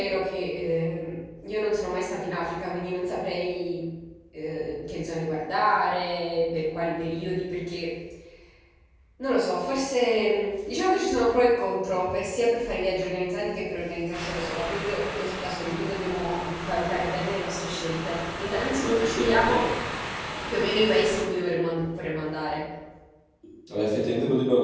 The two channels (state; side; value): identical; both; correlation 1.00